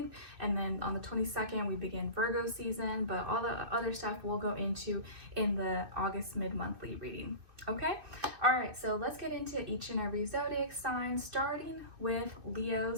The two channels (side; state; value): left; late; 2.5 ms